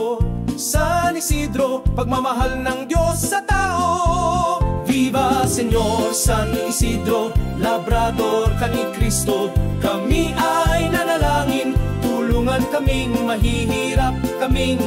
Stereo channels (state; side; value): identical; both; correlation 1.00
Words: San Isidro, pagmamahal ng Diyos sa tao. Viva Señor San Isidro, labrador ka ni Cristo. Kami ay nanalangin, tulungan kaming mahihirap,